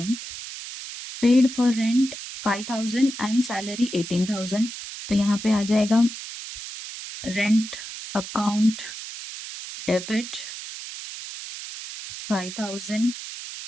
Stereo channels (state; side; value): noise; right; hiss, 10 dB below the sound